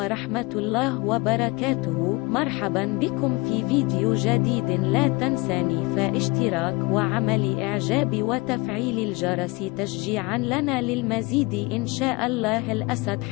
الله وبركاته. مرحبا بكم في فيديو جديد. لا تنساني فاشتراك وعمل إعجاب وتفعيل الجرس تشجيعا لنا للمزيد إن شاء الله. الأسد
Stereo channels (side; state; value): right; quieter; 25.3 dB